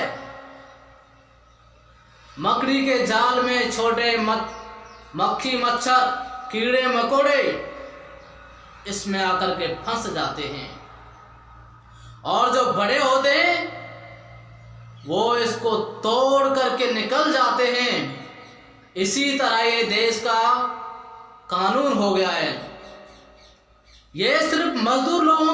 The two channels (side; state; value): both; identical; correlation 1.00